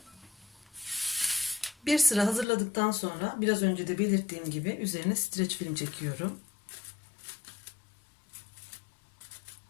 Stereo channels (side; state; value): right; drops out; at 2.5 s